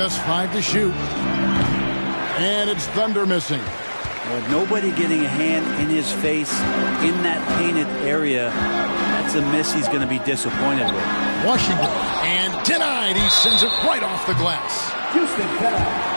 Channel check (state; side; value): inverted; both; correlation -1.00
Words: 5 to shoot. And it's Thunder missing. With nobody getting a hand in his face in that painted area, that's a miss he's going to be disappointed with. Washington. And denied. He sends it right off the glass. Houston foul.